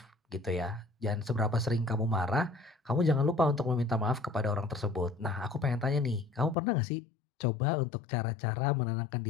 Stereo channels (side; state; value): right; drops out; at 6.6 s